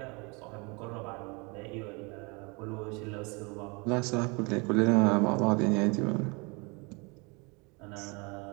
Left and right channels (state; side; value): quieter; left; 29.3 dB